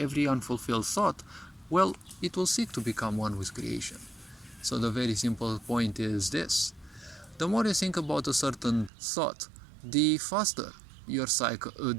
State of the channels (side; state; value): left; drops out; at 8.9 s